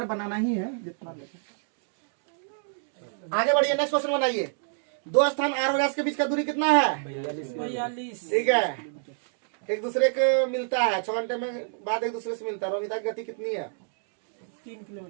बनाना ही है जितना लगे। आगे बढ़िए, नेक्स्ट क्वेश्चन बनाइए। दो स्थान आर और एस के बीच का दूरी कितना है? 42। ठीक है, एक दूसरे को मिलता है 6 घंटे में बाद एक दूसरे से मिलता है। रोमिता की गति कितनी है? 3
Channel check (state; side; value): silent; left; digital silence